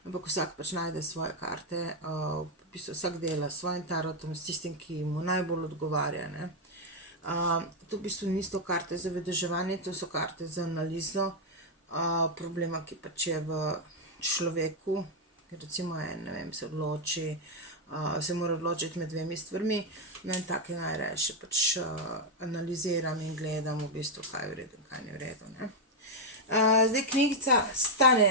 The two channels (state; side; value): normal; both; correlation 0.01